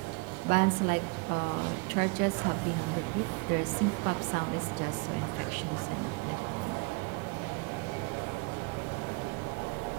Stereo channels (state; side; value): quieter; left; 28.8 dB